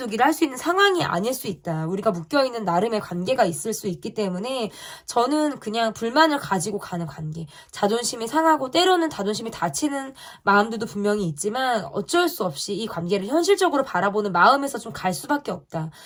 할 수 있는 상황이 아닐 수 있다. 우리가 묶여있는 나름의 관계가 있을 수 있기 때문에 저는 그냥 불만을 가지고 가는 관계. 자존심이 상하고 때로는 자존심이 다치는 마음들도 분명히 있지만 어쩔 수 없이 이 관계를 현실적으로 바라보는 마음에서 좀 갈 수밖에 없다.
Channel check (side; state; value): both; identical; correlation 1.00